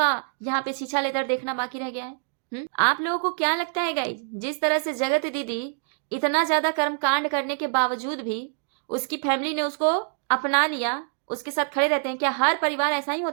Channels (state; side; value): silent; left; digital silence